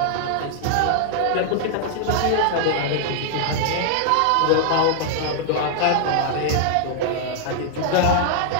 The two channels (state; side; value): different; both; correlation -0.01